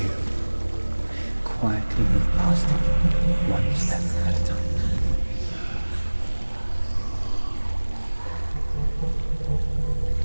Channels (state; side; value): inverted; both; correlation -1.00